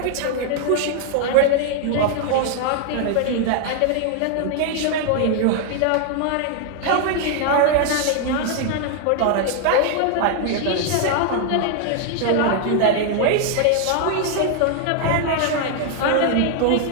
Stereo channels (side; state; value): both; different; correlation 0.00